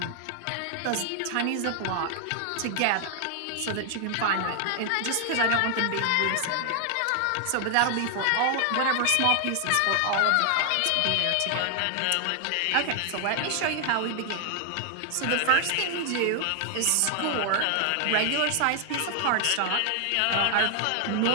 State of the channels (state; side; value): different; both; correlation 0.00